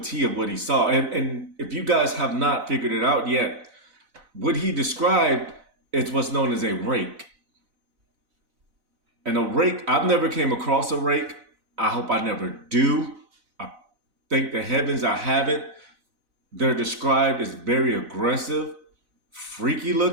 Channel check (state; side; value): late; left; 4.0 ms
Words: of what he saw. And if you guys have not figured it out yet, what he described is what's known as a rake. And a rake, I've never came across a rake. I hope I never do. I thank the heavens I haven't. They're described as very aggressive, freaky